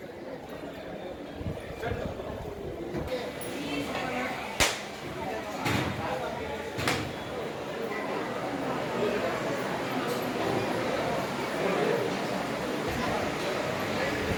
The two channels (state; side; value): identical; both; correlation 1.00